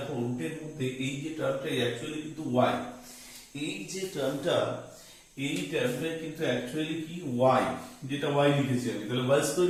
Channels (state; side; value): identical; both; correlation 1.00